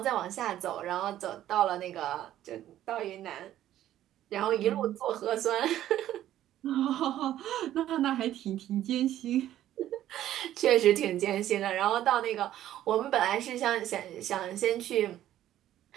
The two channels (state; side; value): quieter; left; 12.6 dB